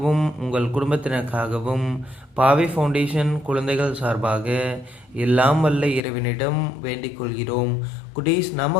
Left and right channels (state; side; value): drops out; right; at 6.0 s